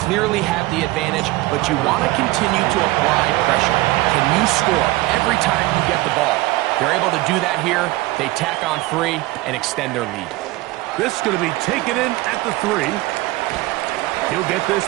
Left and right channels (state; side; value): quieter; left; 19.4 dB